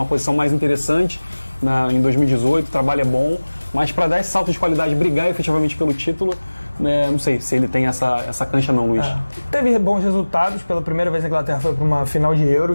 posição mais interessante em 2018, o trabalho é bom, mas para dar esse salto de qualidade, brigar efetivamente pelo título, não sei se ele tem essa cancha não, Luiz. Teve bons resultados, pela primeira vez a Inglaterra foi para uma final de Euro,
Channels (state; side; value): inverted; both; correlation -1.00